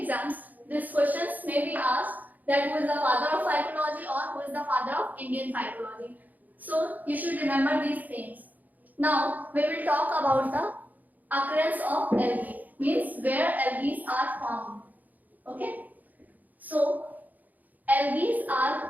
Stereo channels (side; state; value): left; late; 0.081 ms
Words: these questions may be asked that who is the father of phycology or who is the father of Indian phycology. So you should remember these things. Now we will talk about the occurrence of algae, means where algae are found. Okay. So algae